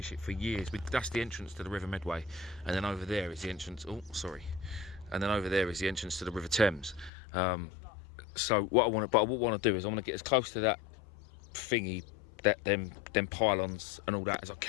it for years. That's the entrance to the River Medway, and then over there is the entrance. Oh, sorry. And then over there is the entrance to the River Thames. So what I want to do is I want to get as close to that thingy, that them pylons and all that as I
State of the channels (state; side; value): drops out; right; at 7.1 s